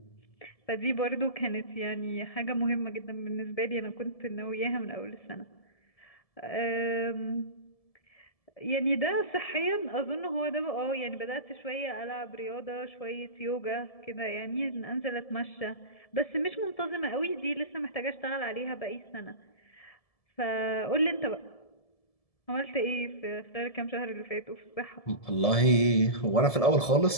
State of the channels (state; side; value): late; right; 1.7 ms